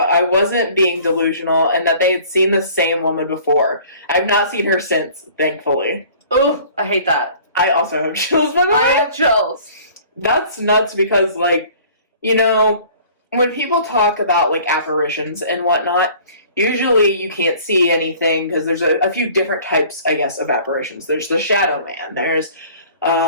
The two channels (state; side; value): inverted; both; correlation -0.50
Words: I wasn't being delusional, and that they had seen the same woman before. I've not seen her since, thankfully. Oh, I hate that. I also have chills, by the way. I have chills. That's nuts because, like, when people talk about, like, apparitions and whatnot, usually you can't see anything because there's a few different types, I guess, of apparitions. There's the shadow man. There's